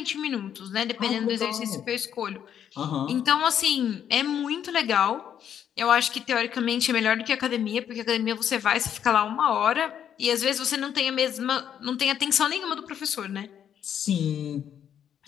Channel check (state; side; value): quieter; right; 9.2 dB